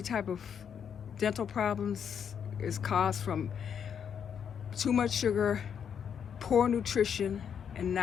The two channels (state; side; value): quieter; right; 7.8 dB